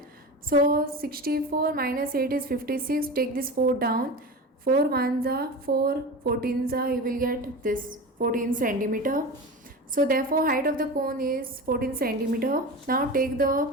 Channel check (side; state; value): both; normal; correlation 0.28